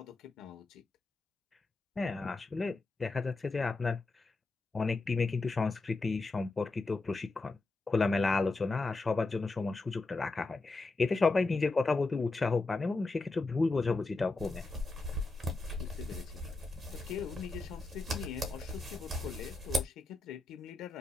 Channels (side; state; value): right; quieter; 3.4 dB